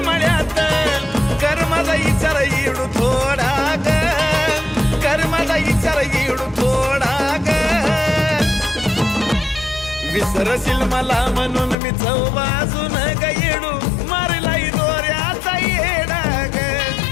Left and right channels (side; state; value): right; drops out; at 11.8 s